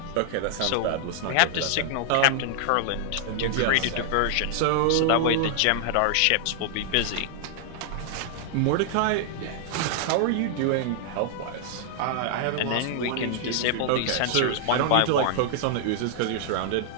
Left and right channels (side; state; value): both; different; correlation -0.01